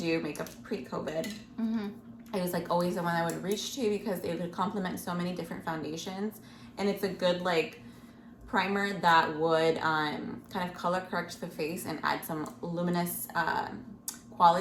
makeup pre-COVID, it was like always the one I would reach to because it would complement so many different foundations, and it's a good like primer that would kind of color correct the face and add some luminous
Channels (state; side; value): identical; both; correlation 1.00